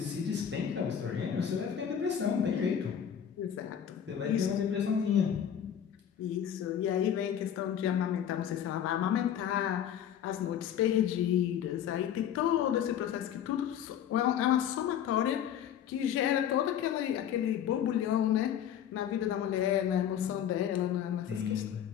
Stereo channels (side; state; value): right; quieter; 9.4 dB